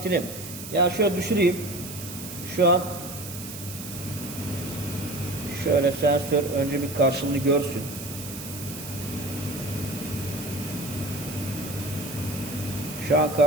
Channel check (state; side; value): noise; right; hiss, 11 dB below the sound